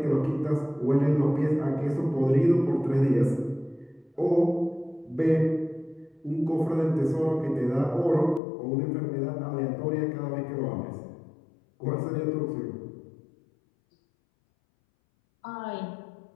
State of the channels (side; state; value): right; drops out; at 8.4 s